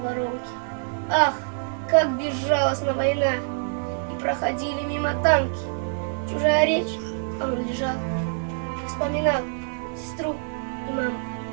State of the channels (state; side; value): silent; left; digital silence